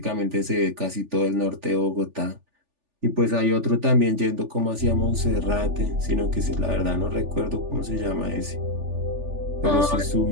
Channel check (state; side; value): late; left; 3.4 ms